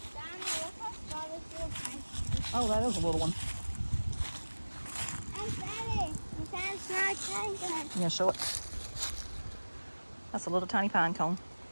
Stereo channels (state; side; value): inverted; both; correlation -1.00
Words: Oh, that is a little one. You gonna show it? That's a little tiny pine cone.